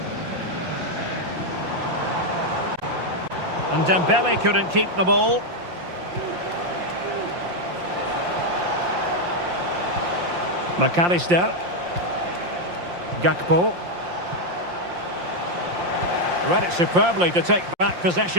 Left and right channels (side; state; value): left; late; 5.7 ms